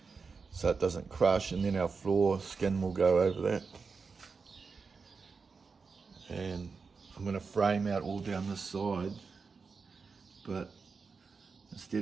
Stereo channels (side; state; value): left; quieter; 4.9 dB